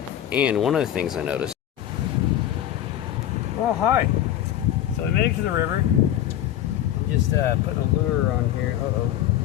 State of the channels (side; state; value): right; quieter; 11.8 dB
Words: And one of the things I noticed. Oh, hi. So we made it to the river. I'm just putting a lure on here. Uh-oh.